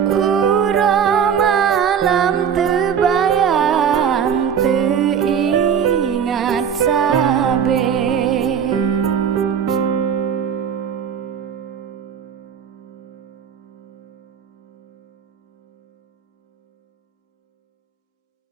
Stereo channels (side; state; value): left; quieter; 7.6 dB